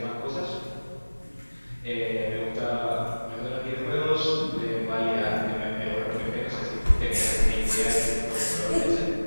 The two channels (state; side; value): inverted; both; correlation -1.00